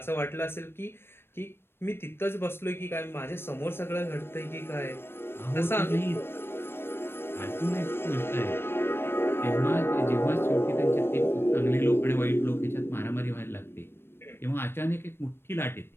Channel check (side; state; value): right; late; 0.11 ms